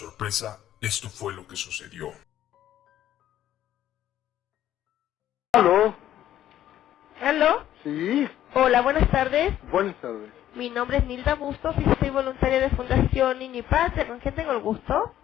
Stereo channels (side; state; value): right; quieter; 12.1 dB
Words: esto fue lo que sucedió. ¿Aló? ¿Aló? Sí, Hola, buenas tardes. buenas tardes. Mi nombre es Nilda Bustos y soy voluntaria de Fundación Niño y Patria. ¿Con quién tengo el gusto?